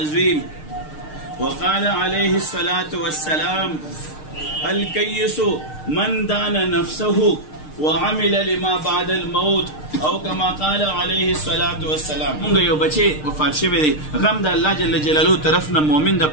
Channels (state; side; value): late; right; 6.6 ms